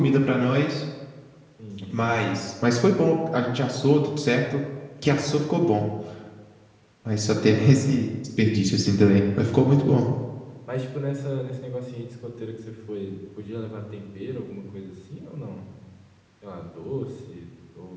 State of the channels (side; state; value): both; identical; correlation 1.00